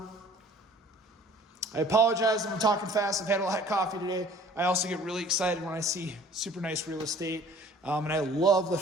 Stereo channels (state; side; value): normal; both; correlation 0.51